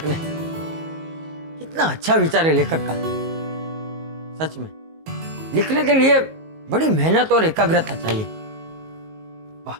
ने, कितना अच्छा विचार है लेखक का। सच में लिखने के लिए बड़ी मेहनत और एकाग्रता चाहिए। वाह।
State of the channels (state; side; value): late; left; 19 ms